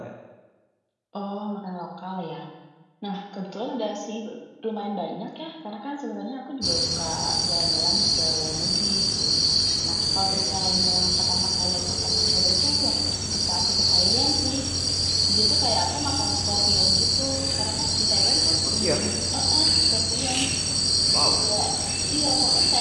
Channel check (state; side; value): identical; both; correlation 1.00